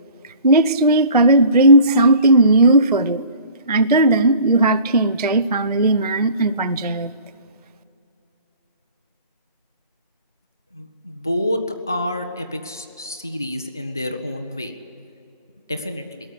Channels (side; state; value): both; inverted; correlation -0.49